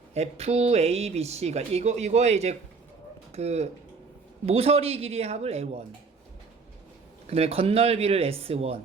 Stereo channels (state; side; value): quieter; left; 4.7 dB